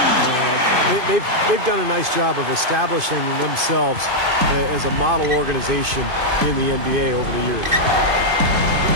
They've done a nice job of establishing themselves as a model organization in the NBA over the years.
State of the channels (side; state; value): left; late; 2.5 ms